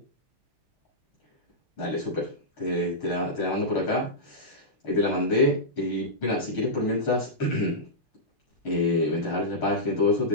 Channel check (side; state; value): both; normal; correlation -0.13